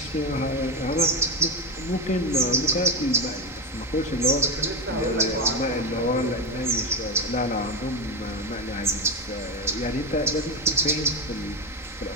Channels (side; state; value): both; normal; correlation 0.14